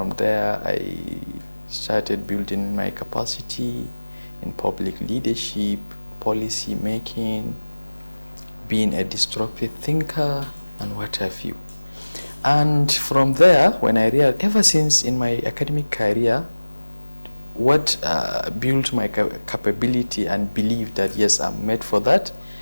there, I started building my capacity in public leadership, policy making, being a disruptive thinker, and what have you. And from there, when I realized, ever since in my academic career, what built my capability and belief that yes, I'm made for that,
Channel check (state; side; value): inverted; both; correlation -1.00